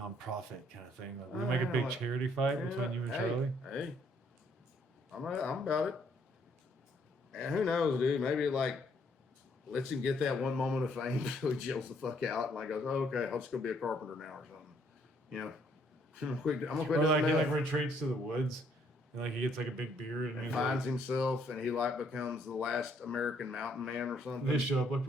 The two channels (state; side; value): normal; both; correlation 0.67